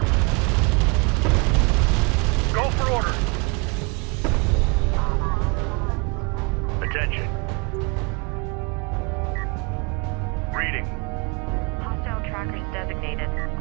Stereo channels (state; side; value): quieter; left; 31.1 dB